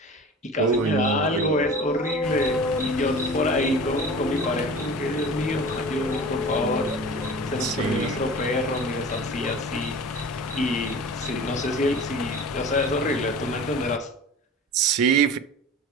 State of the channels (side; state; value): both; normal; correlation 0.38